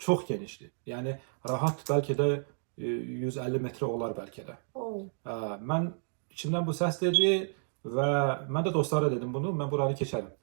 genişdir. Yəni rahat bəlkə də 150 metrə olar bəlkə də. Mən içimdən bu səs dedi və mən də dostlara dedim bunu, mən buranı keçərəm.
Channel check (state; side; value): silent; left; digital silence